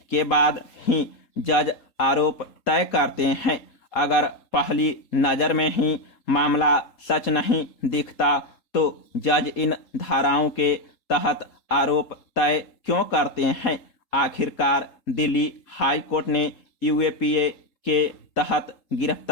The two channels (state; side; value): late; right; 3.8 ms